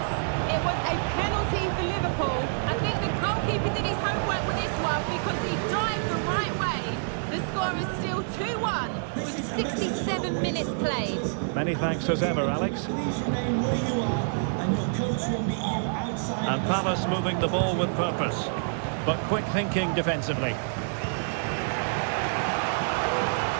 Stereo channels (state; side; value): silent; left; 59 dB below the other